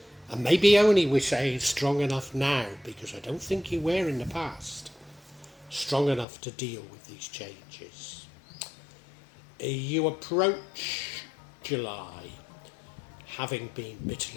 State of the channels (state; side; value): drops out; right; at 6.2 s